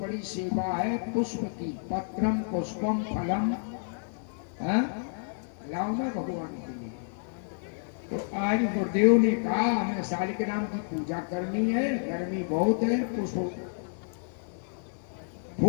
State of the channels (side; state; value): right; silent; 58 dB below the other